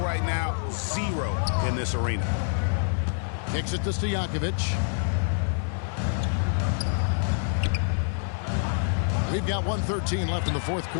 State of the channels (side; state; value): right; silent; 59 dB below the other